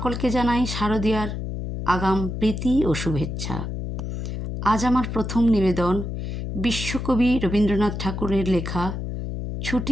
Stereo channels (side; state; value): left; noise; hum, 5 dB below the sound